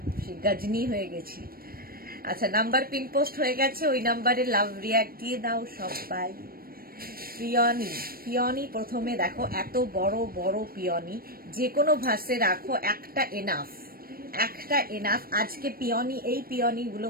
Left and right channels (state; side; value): late; left; 0.43 ms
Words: সেই গজনি হয়ে গেছি। আচ্ছা, নাম্বার পিন পোস্ট হয়ে গেছে, ওই নাম্বারে লাভ রিয়াক্ট দিয়ে দাও সবাই। পিওনি প্রথমে দেখো, এত বড় বড় পিওনি, যে কোনো ভাসে রাখো, একটা এনাফ। আজকে এই পিওনি গুলো